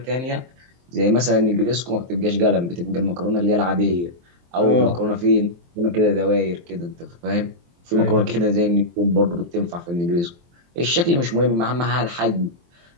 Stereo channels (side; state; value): left; late; 23 ms